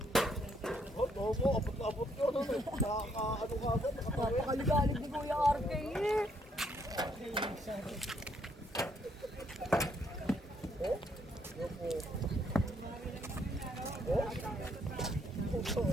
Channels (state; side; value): normal; both; correlation 0.71